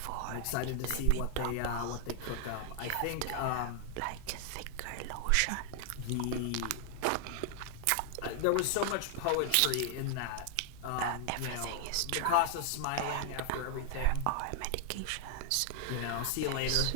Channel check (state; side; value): different; both; correlation 0.00